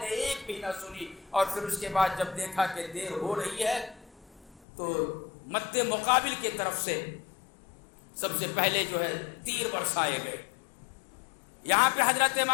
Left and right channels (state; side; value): drops out; right; at 4.6 s